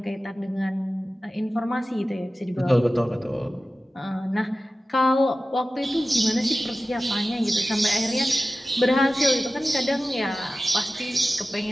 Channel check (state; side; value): normal; both; correlation 0.95